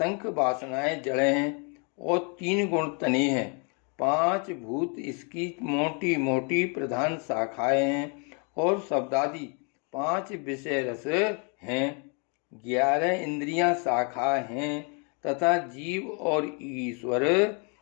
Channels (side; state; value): right; quieter; 36.1 dB